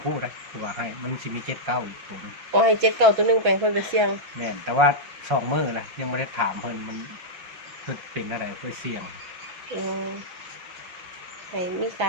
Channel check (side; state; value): left; late; 6.1 ms